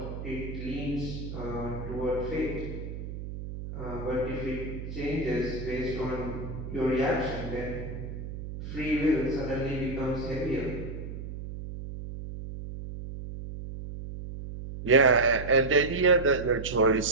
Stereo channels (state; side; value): noise; right; hum, 8 dB below the sound